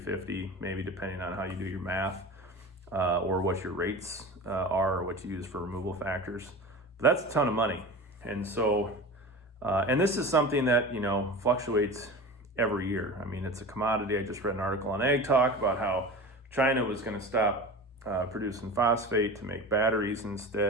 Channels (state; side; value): normal; both; correlation 0.32